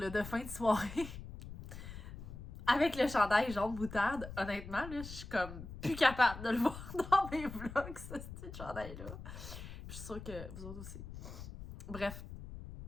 de fin de soirée. Avec le chandail jaune moutarde, honnêtement, là, je suis comme plus capable de le voir dans mes vlogs, ce petit chandail-là. Je suis sûre que vous autres aussi. Bref,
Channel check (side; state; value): left; noise; rumble, 11 dB below the sound